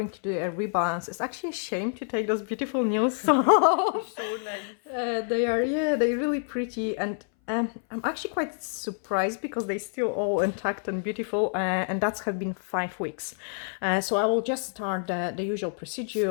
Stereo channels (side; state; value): right; silent; 60 dB below the other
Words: to do a rebalance. It's actually a shame to take those beautiful nails off. So nice. They're really pretty, and I'm actually quite surprised because they're still all intact and beautiful, and that's have been 5 weeks. So I will just start the usual